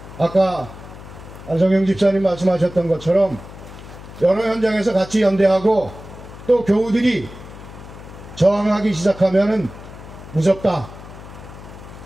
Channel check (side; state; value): left; noise; hum, 16 dB below the sound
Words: 아까 안성영 집사님 말씀하셨던 것처럼 여러 현장에서 같이 연대하고 또 교우들이 저항하기 시작하면은 무섭다.